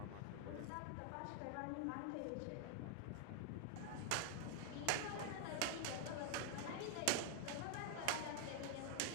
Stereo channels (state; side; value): different; both; correlation -0.01